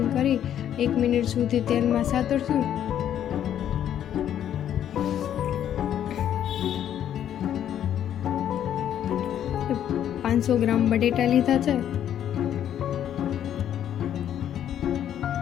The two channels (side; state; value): right; quieter; 10.3 dB